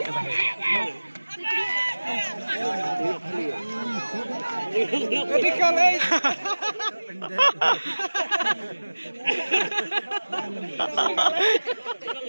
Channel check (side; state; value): both; inverted; correlation -1.00